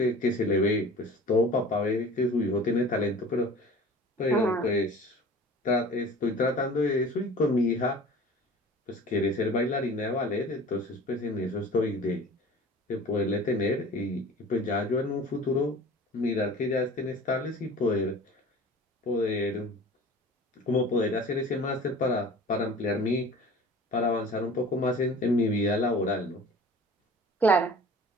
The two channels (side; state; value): both; normal; correlation 0.42